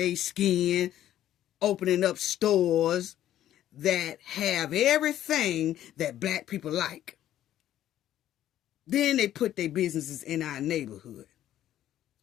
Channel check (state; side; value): quieter; right; 12.2 dB